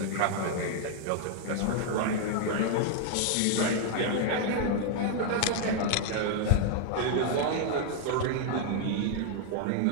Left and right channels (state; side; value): different; both; correlation 0.00